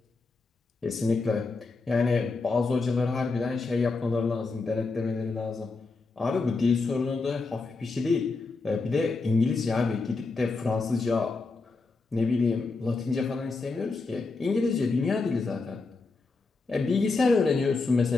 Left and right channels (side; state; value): right; quieter; 3.9 dB